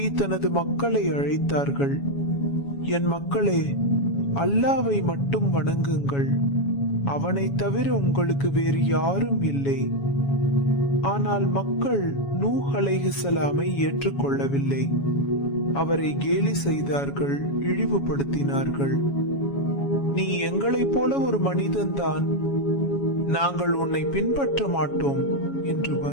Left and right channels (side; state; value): right; late; 7.2 ms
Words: தனது மக்களை அழைத்தார்கள். என் மக்களே, அல்லாவை மட்டும் வணங்குங்கள், அவனை தவிர உங்களுக்கு வேறு யாரும் இல்லை. ஆனால் மக்கள் நூஹ் அலைஹிஸ்ஸலாமை ஏற்றுக்கொள்ளவில்லை. அவரை கேலி செய்தார்கள், இழிவுபடுத்தினார்கள். நீ எங்களைப் போல ஒரு மனிதன்தான், நாங்கள் உன்னை பின்பற்ற மாட்டோம் என்று